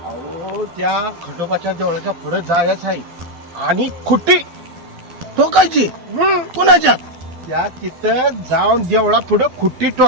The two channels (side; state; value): left; late; 12 ms